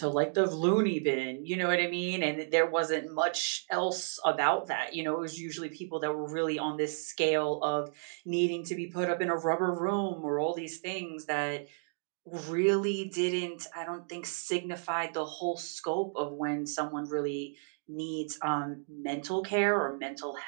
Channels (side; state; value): left; silent; digital silence